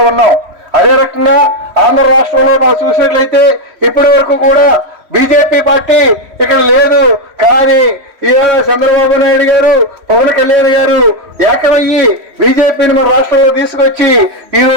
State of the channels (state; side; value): late; left; 3.1 ms